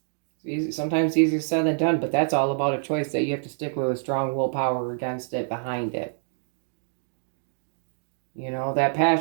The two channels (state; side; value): silent; left; digital silence